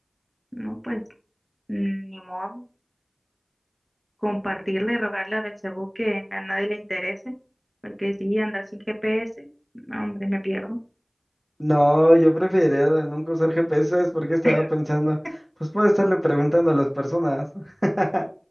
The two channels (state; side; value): identical; both; correlation 1.00